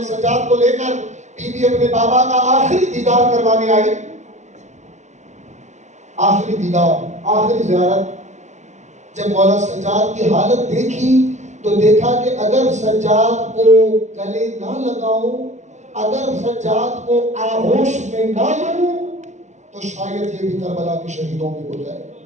سجاد کو لے کر بی بی اپنے بابا کا آخری دیدار کروانے آئی، آخری دیدار، آخری زیارت، جب مولا سجاد کی حالت دیکھی تو دیکھا کہ اگر سجاد کو گلے نہ لگاؤں، اگر سجاد کو آغوش میں نہ لوں تو شاید یہ بھی کربلا کے شہیدوں میں ہو جائے.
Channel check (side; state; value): left; late; 0.34 ms